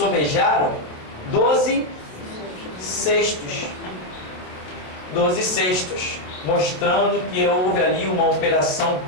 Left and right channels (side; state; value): right; late; 27 ms